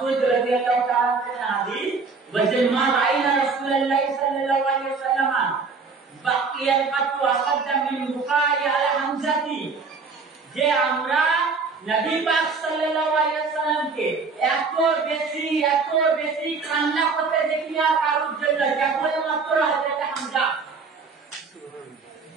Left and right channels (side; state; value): left; quieter; 4.7 dB